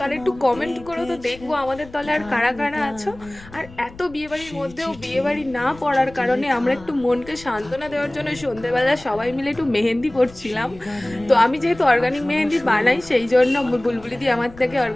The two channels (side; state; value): left; noise; rumble, 20 dB below the sound